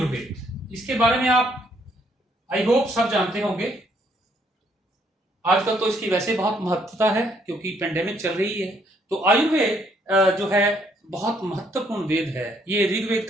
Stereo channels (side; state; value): both; normal; correlation 0.68